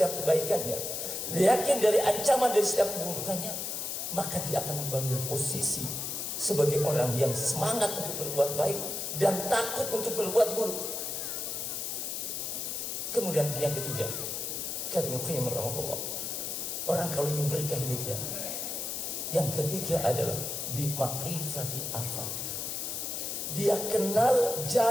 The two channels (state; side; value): noise; left; hiss, 3 dB below the sound